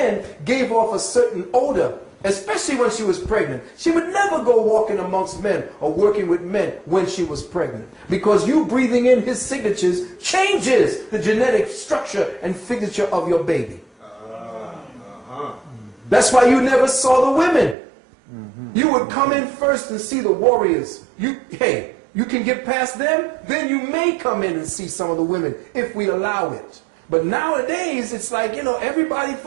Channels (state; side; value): drops out; left; at 17.8 s